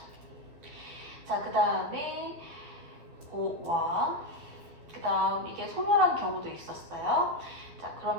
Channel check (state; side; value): late; left; 12 ms